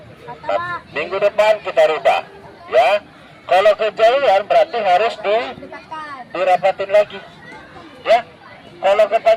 Nah, minggu depan kita rubah, ya. Kalau kejauhan berarti harus dirapatin lagi, ya. Kalau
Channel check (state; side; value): identical; both; correlation 1.00